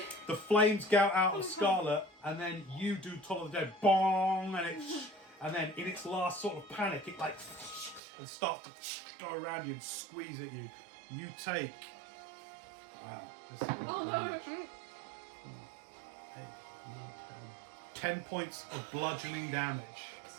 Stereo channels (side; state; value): left; drops out; at 8.0 s